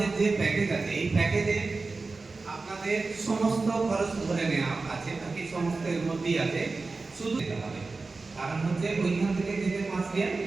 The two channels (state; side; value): quieter; left; 3.8 dB